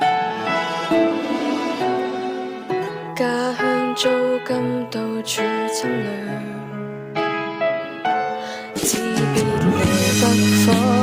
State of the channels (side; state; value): both; identical; correlation 1.00